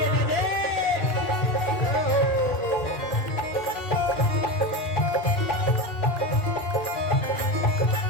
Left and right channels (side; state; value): right; late; 2.4 ms